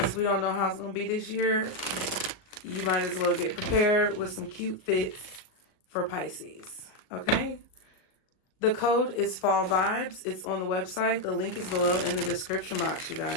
we don't know how it's going to be this year, you might as well get prepared with some cute fits for Pisces, okay? The code is Fall Vibes. It's on the website. The link is below in the description box, you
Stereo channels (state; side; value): late; right; 38 ms